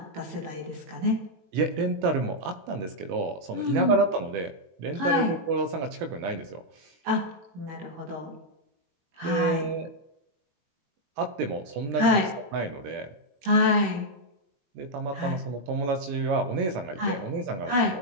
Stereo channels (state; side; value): late; left; 21 ms